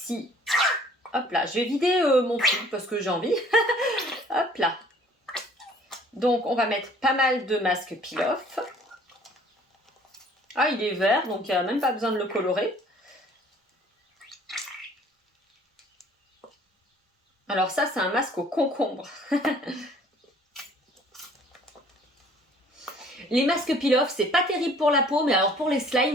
hop là, je vais vider mon truc parce que j'ai envie. Hop là. Donc on va mettre pas mal de masque peel-off. Ah, il est vert, donc il n'y a même pas besoin de le colorer. Alors ça, c'est un masque au concombre. Les masques peel-off, c'est pas terrible pour la peau, mais alors pour les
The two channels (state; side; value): normal; both; correlation 0.54